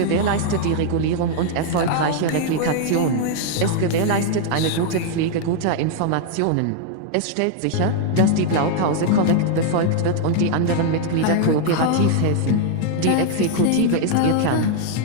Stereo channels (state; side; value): different; both; correlation 0.00